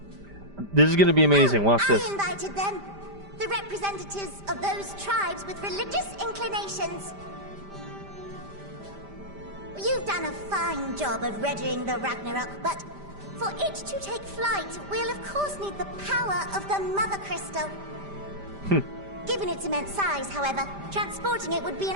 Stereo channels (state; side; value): late; left; 5.0 ms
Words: This is gonna be amazing, watch this. I invited them. The representatives of those tribes with religious inclinations. You've done a fine job of readying the Ragnarok, but for it to take flight, we'll of course need the power of the Mother Crystal. Given its immense size, however, transporting it would be an